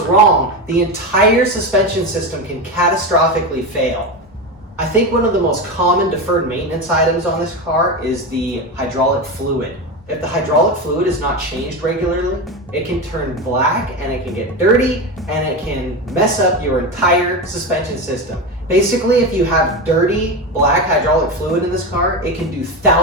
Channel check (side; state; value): both; normal; correlation 0.19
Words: wrong, the entire suspension system can catastrophically fail. I think one of the most common deferred maintenance items on this car is the hydraulic fluid. If the hydraulic fluid is not changed regularly, it can turn black and it can get dirty and it can mess up your entire suspension system. Basically, if you have dirty black hydraulic fluid in this car, it can do